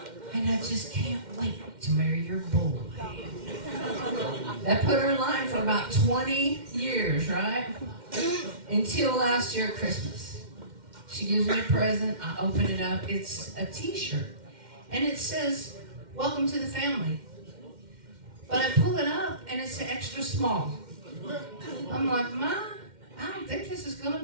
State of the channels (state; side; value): late; left; 2.1 ms